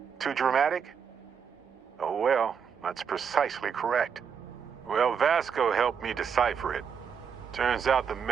Too dramatic? Oh well, that's precisely correct. Well, Vasco helped me decipher it. Turns out the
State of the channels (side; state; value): left; quieter; 7.0 dB